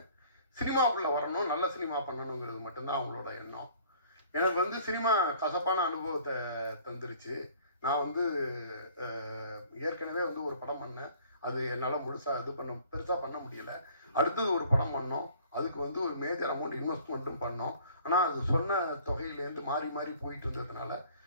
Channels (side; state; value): both; inverted; correlation -0.53